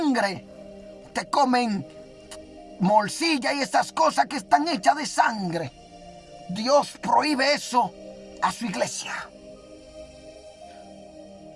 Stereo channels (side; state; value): both; identical; correlation 1.00